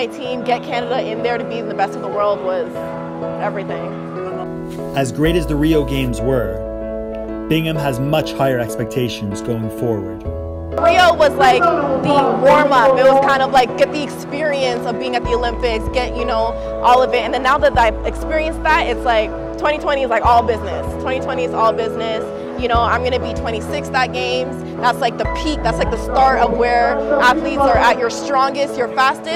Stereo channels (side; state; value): both; identical; correlation 1.00